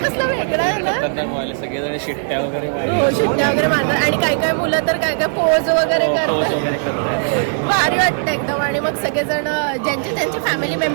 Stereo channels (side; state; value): left; silent; digital silence